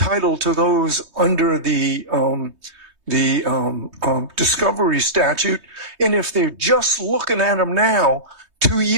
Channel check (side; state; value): left; late; 3.2 ms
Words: to those under the discovery statute. And if they're just looking at them now, 2